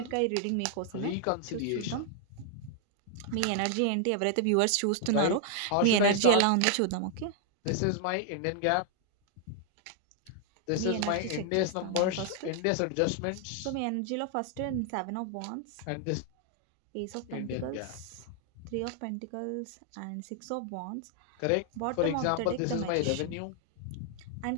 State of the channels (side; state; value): both; different; correlation 0.00